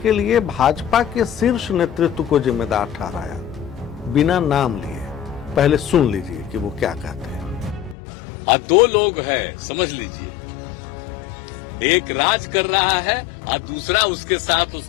लिए भाजपा के शीर्ष नेतृत्व को जिम्मेदार ठहराया, बिना नाम लिए। पहले सुन लीजिए कि वो क्या कहते हैं। दो लोग हैं, समझ लीजिए। एक राज कर रहा है और दूसरा उसके साथ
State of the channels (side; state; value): right; drops out; at 8.0 s